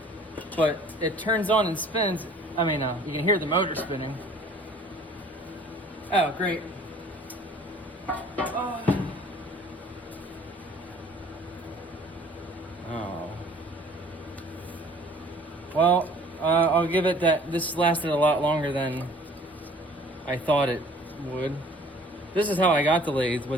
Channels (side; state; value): both; normal; correlation 0.53